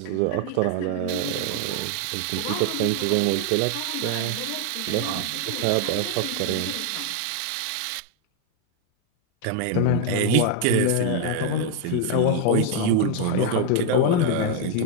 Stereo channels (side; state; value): both; different; correlation 0.01